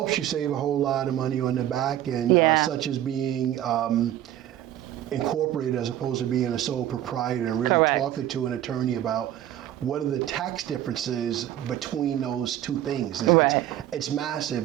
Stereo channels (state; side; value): quieter; left; 12.3 dB